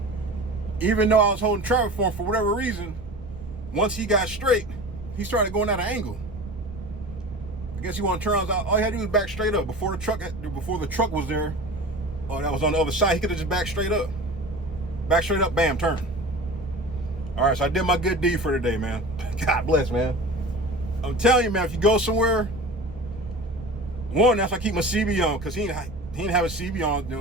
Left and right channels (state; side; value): noise; right; rumble, 14 dB below the sound